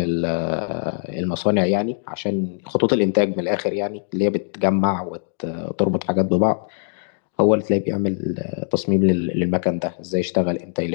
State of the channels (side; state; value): right; silent; digital silence